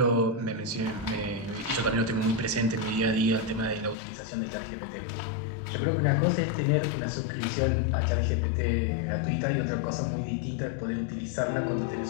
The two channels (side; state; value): right; drops out; at 4.0 s